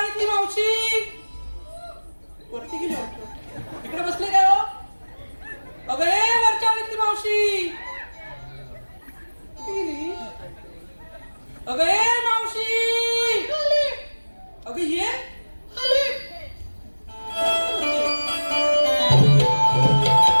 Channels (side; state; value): both; inverted; correlation -1.00